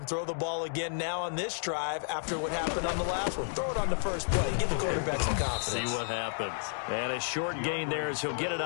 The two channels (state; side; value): silent; right; digital silence